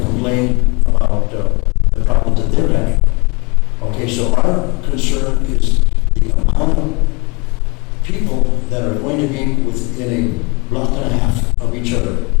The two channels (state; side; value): quieter; right; 28.8 dB